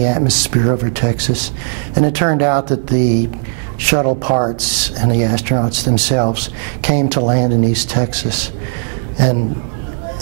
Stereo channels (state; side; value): silent; left; 67 dB below the other